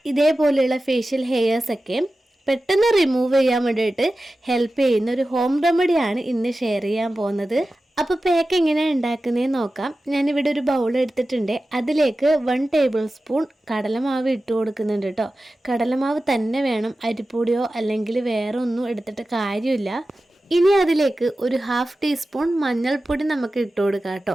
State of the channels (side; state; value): both; normal; correlation 0.94